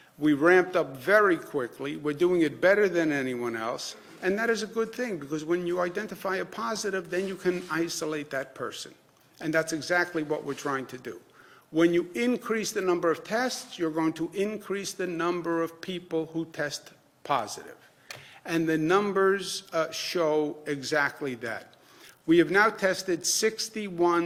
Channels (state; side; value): identical; both; correlation 1.00